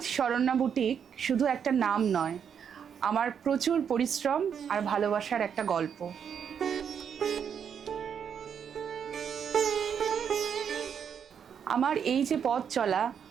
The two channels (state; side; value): quieter; left; 7.6 dB